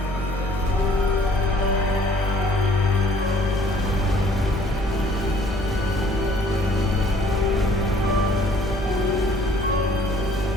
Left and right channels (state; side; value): normal; both; correlation 0.58